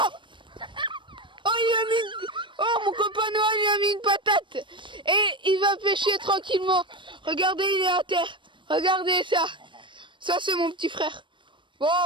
Oh, mon copain Noah lui a mis une patate et il va pêcher tranquillement. Regardez, il est à terre. Regardez ça. Ça, c'est mon petit frère. Bon,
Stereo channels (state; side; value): late; left; 0.24 ms